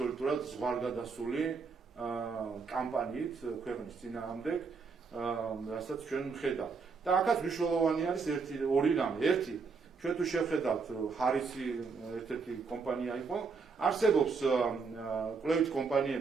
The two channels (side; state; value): left; quieter; 4.9 dB